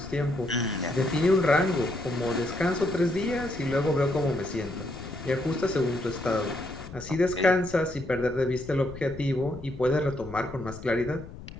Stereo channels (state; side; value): noise; left; rumble, 14 dB below the sound